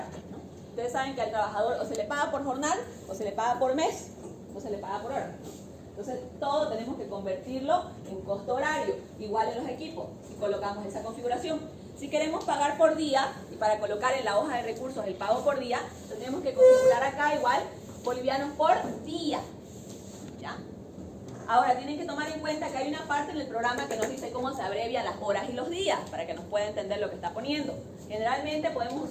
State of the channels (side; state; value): both; identical; correlation 1.00